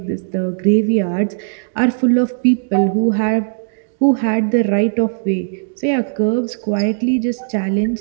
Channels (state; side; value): silent; left; digital silence